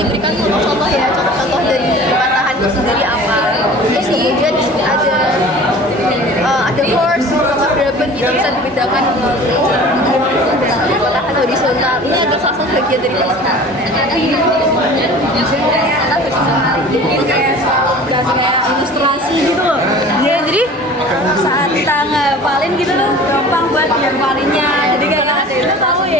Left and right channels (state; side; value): normal; both; correlation 0.42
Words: contoh ya, contoh dari patahan itu sendiri apa. Terus kemudian di sini ada horse sama dragon gitu bisa dibedakan patahan horizontal. Ini adalah salah satu bagian dari patahan. Ini kayak ilustrasi gitu loh. Ya, jadi saat kita ngapalin gitu loh, gampang buat ngapalinnya. Jadi kayak kita tahu